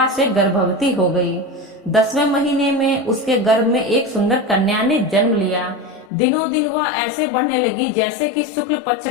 से गर्भवती हो गई। 10वें महीने में उसके गर्भ में एक सुंदर कन्या ने जन्म लिया। दिनों दिन वह ऐसे बढ़ने लगी जैसे कि शुक्ल पक्ष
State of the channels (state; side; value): drops out; right; at 6.1 s